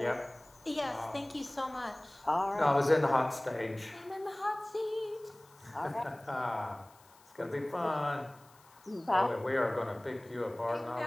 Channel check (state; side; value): noise; left; hiss, 28 dB below the sound